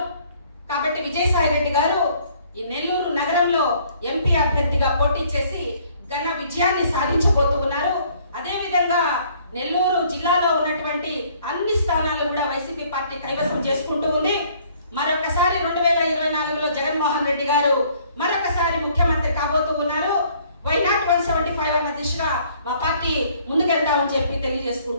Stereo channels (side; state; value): both; inverted; correlation -0.60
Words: కాబట్టి విజయసాయి రెడ్డి గారు ఈ నెల్లూరు నగరంలో ఎంపీ అభ్యర్థిగా పోటీ చేసి ఘన విజయాన్ని సాధించబోతూ ఉన్నారు. అదే విధంగా నెల్లూరు జిల్లాలో ఉన్నటువంటి అన్ని స్థానాలు కూడా వైసీపీ పార్టీ కైవసం చేసుకుంటూ ఉంది. మరొకసారి 2024లో జగన్మోహన్ రెడ్డి గారు మరొకసారి ముఖ్యమంత్రి కాబోతూ ఉన్నారు. వై నాట్ 175 అన్న దిశగా మా పార్టీ ముందుకెళ్తామని చెప్పి